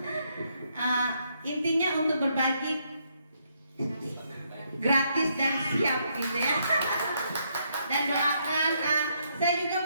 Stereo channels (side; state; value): both; inverted; correlation -0.75